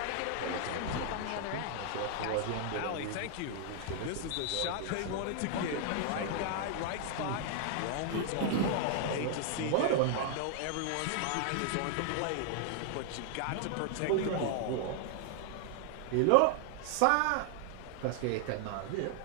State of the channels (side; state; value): both; different; correlation 0.00